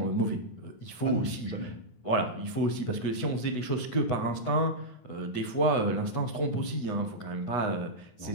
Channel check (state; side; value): late; right; 9.6 ms